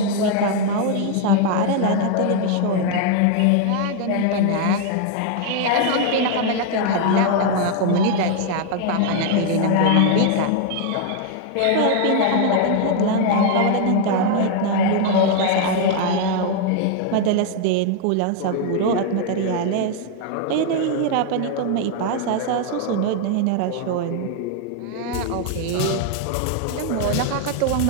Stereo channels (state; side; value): different; both; correlation 0.00